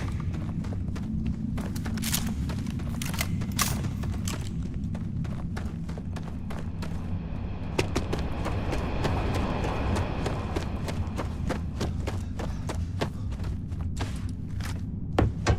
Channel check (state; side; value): identical; both; correlation 1.00